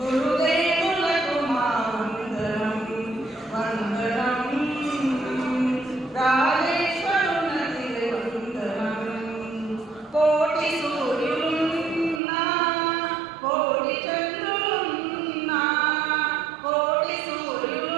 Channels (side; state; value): left; drops out; at 12.2 s